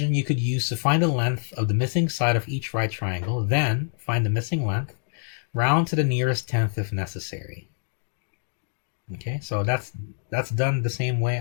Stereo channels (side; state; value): right; silent; digital silence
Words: you could use to find the length of the missing side of each right triangle, then find the missing length, round to the nearest tenth if necessary. Okay, so that's done the same way